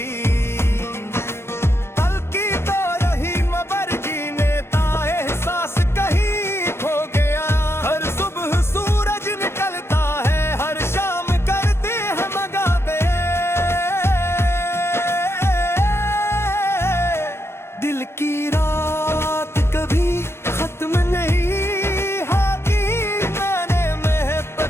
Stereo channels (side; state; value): right; late; 0.12 ms